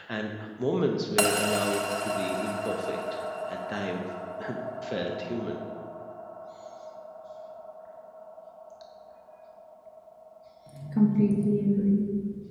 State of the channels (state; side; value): identical; both; correlation 1.00